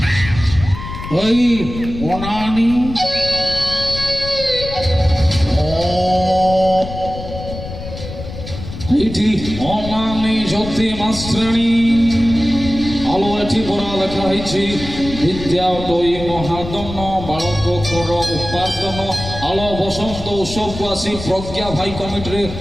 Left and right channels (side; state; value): left; noise; rumble, 10 dB below the sound